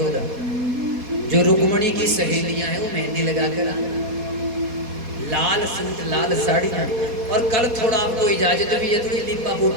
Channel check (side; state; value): left; late; 4.2 ms